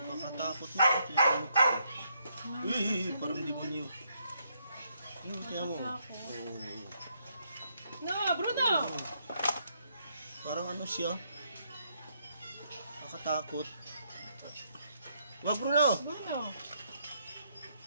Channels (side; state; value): both; inverted; correlation -0.74